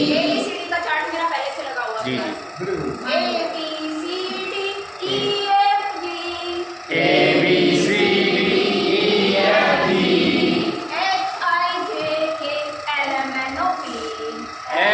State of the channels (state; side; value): identical; both; correlation 1.00